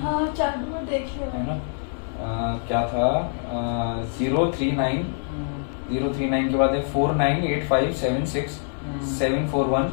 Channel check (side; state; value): right; silent; digital silence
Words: हाँ चालू में देखिए है ना। क्या था 039 039 के बाद है 498576 741